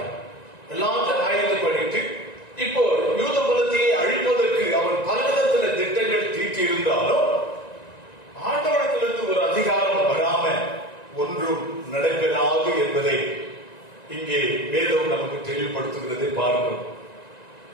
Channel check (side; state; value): right; late; 1.9 ms